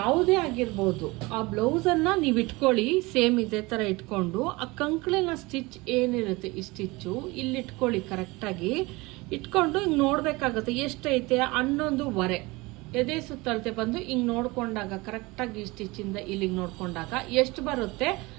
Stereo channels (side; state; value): left; quieter; 23.3 dB